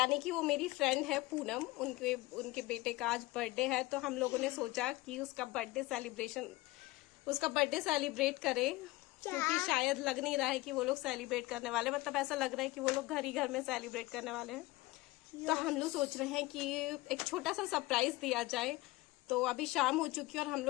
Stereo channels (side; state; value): right; quieter; 20.3 dB